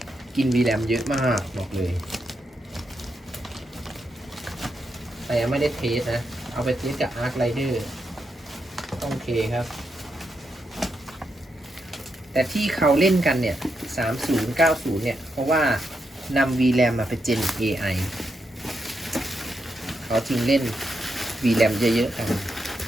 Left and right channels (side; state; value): both; normal; correlation 0.83